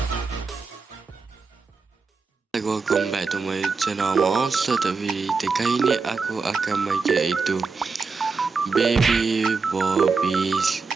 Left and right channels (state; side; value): quieter; left; 4.6 dB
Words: Welcome back to my channel Monster TV. Kali ini aku akan main itu Baby Bobby's